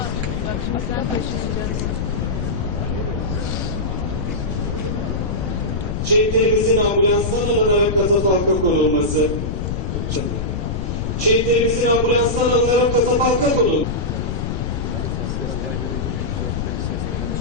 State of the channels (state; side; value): noise; left; rumble, 2 dB below the sound